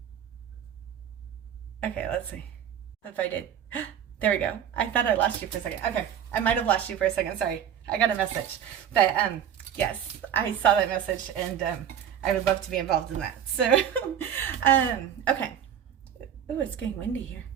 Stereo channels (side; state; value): left; quieter; 9.2 dB